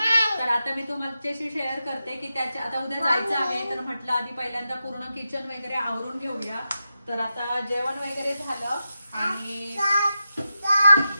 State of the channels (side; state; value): both; inverted; correlation -0.89